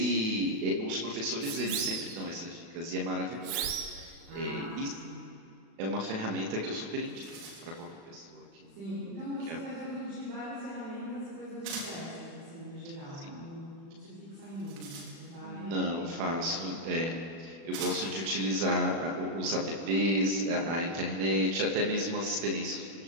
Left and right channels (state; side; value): late; left; 36 ms